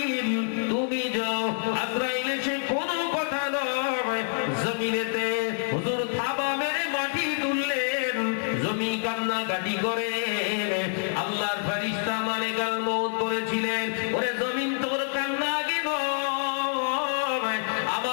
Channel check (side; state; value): right; silent; 60 dB below the other